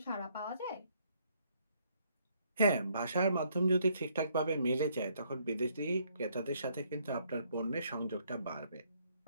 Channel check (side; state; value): both; inverted; correlation -0.69